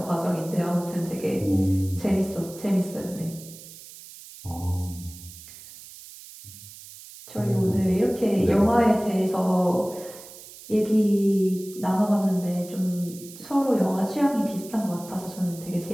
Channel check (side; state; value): right; noise; hiss, 17 dB below the sound